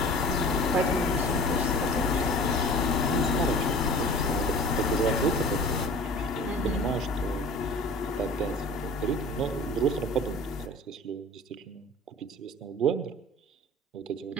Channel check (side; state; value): both; normal; correlation 0.41